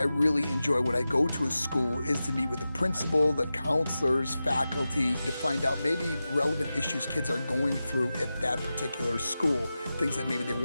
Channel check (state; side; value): inverted; both; correlation -0.93